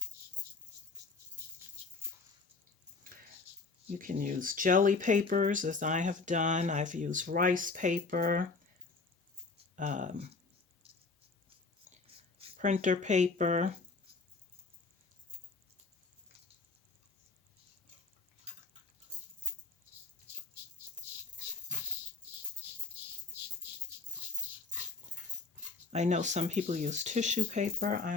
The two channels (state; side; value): quieter; right; 4.0 dB